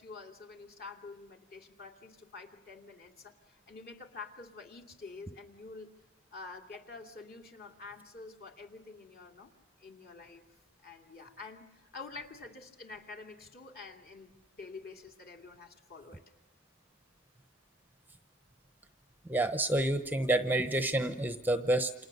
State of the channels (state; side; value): normal; both; correlation 0.60